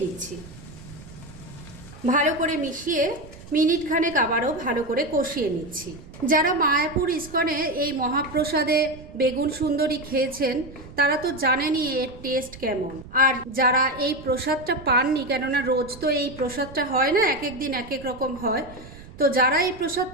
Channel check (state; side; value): noise; right; rumble, 17 dB below the sound